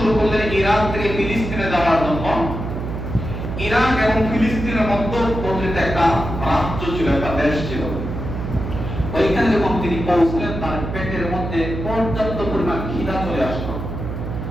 করলেন ইরাক থেকে ফিলিস্তিনে যাওয়ার জন্য, ইরাক এবং ফিলিস্তিনের মধ্যবর্তী একটা রাজ্য ছিল, একটা দেশ ছিল। ওইখানে যখন তিনি পৌঁছলেন তার পেটের মধ্যে পর্যাপ্ত পরিমাণ খিদা চলে আসলো।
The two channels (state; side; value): noise; right; hum, 6 dB below the sound